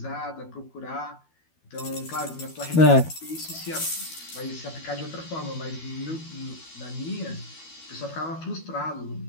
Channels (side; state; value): right; late; 12 ms